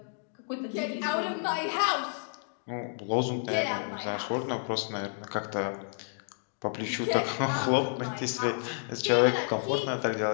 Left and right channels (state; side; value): silent; right; digital silence